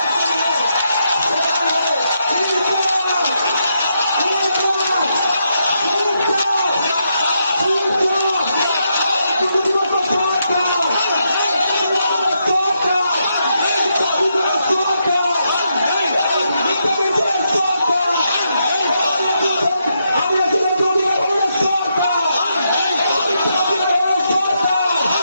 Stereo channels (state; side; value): inverted; both; correlation -0.81